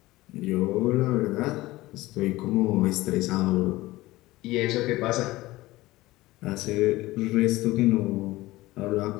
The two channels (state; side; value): quieter; right; 18.6 dB